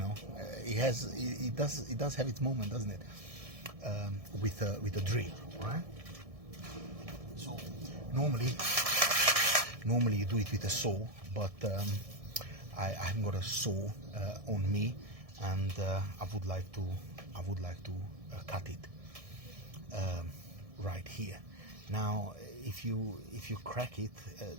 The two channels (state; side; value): late; left; 1.6 ms